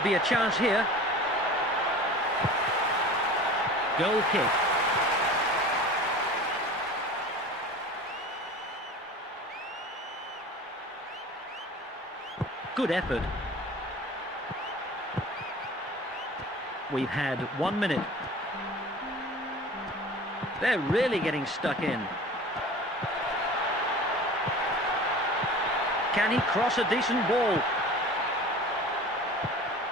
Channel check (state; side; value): normal; both; correlation 0.40